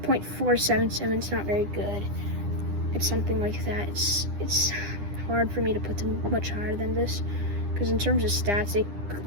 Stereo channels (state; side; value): late; left; 9.9 ms